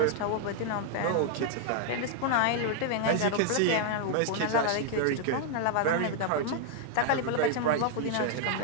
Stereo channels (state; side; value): different; both; correlation 0.00